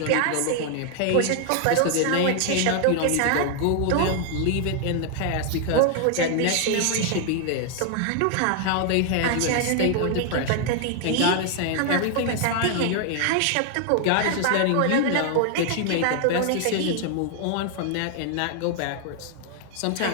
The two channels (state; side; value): different; both; correlation 0.00